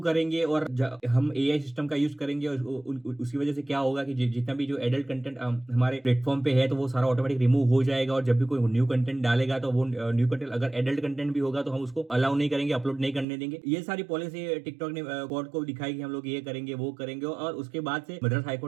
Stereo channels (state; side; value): drops out; left; at 13.2 s